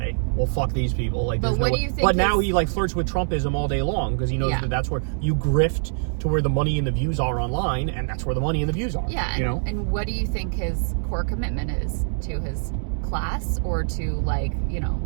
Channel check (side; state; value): left; silent; digital silence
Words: well, fuck these people. But what do you think? But now he flirts with Trumpism all day long because he knows that that's where you grift to where the money and the views are online, and that's where the money and the views are. Yeah. And what do you think his core commitment is to his class or to